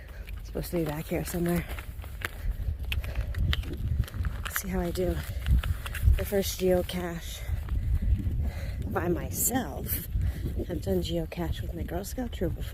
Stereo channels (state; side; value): identical; both; correlation 1.00